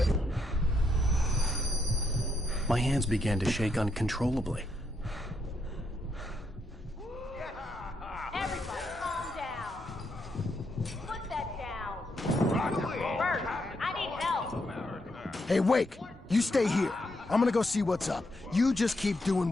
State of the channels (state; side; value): normal; both; correlation 0.79